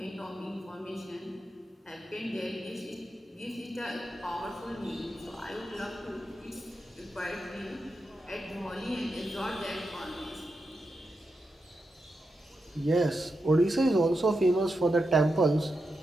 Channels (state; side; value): normal; both; correlation 0.87